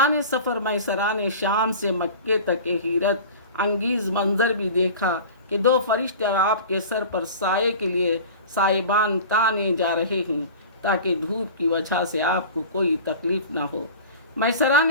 سفر میسرہ نے شام سے مکے تک ایک حیرت انگیز منظر بھی دیکھا کہ دو فرشتے آپ کے سر پر سائے کے لیے سائبان تانے جا رہے ہیں تاکہ دھوپ کی وجہ سے آپ کو کوئی تکلیف نہ ہو۔ میسرہ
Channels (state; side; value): inverted; both; correlation -0.37